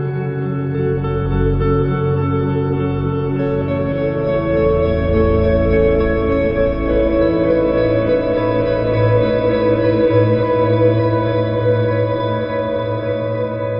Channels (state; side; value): identical; both; correlation 1.00